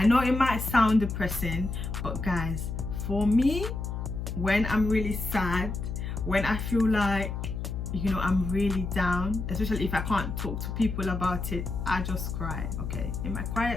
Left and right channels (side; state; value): left; noise; hum, 4 dB below the sound